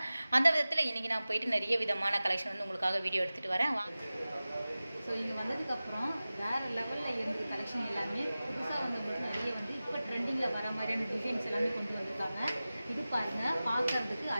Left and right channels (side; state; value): both; inverted; correlation -0.96